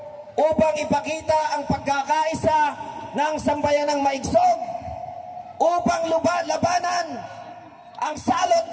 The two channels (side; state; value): both; identical; correlation 1.00